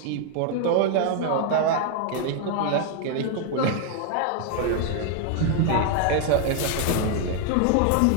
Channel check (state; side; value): different; both; correlation 0.00